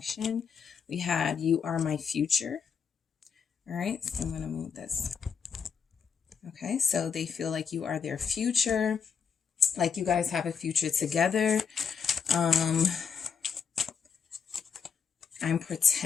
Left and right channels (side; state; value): right; quieter; 6.6 dB